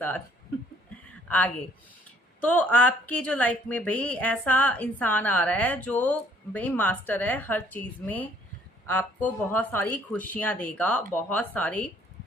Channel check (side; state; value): both; normal; correlation 0.62